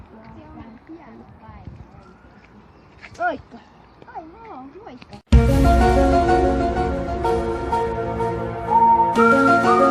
vähän pieni päivä. Moikka! Ai moikka!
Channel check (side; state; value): both; identical; correlation 1.00